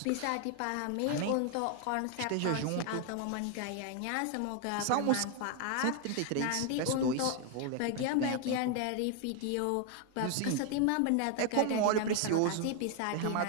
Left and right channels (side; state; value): both; different; correlation 0.01